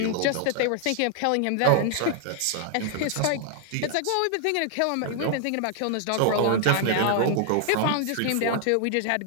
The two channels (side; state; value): both; different; correlation 0.00